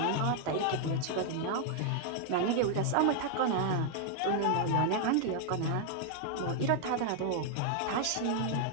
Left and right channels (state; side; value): different; both; correlation 0.00